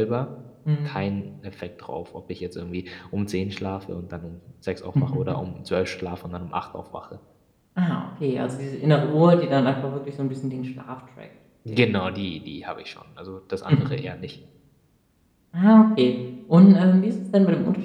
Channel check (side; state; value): both; identical; correlation 1.00